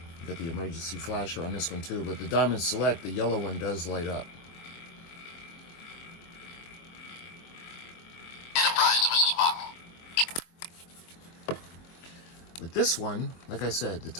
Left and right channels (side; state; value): right; late; 23 ms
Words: Got the emergency flasher on this one too, but the Diamond Select, the yellow one, does light up. Enterprise to Mr. Spock. With this one, like I said, the